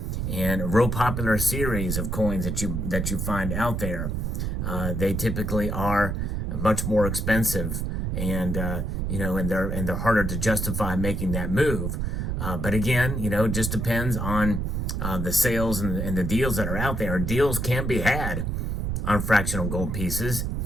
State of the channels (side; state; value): right; noise; rumble, 1 dB below the sound